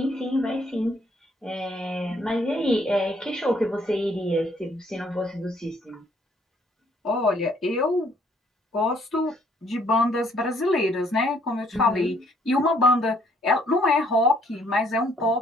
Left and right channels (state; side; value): normal; both; correlation 0.65